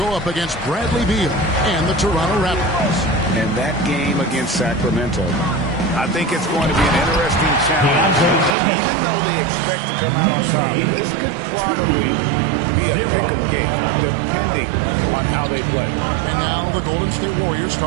up against Bradley Beal and the Toronto Raptors. And that game against Sacramento, I think it's going to be an interesting challenge. Even though they expect to come out on top, this could probably be a pick-em game, depending on how they play. And now the Golden State Warriors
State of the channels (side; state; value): left; drops out; at 8.6 s